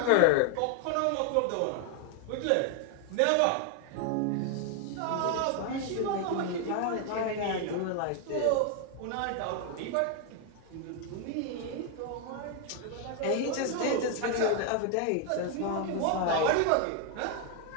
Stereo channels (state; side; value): different; both; correlation 0.01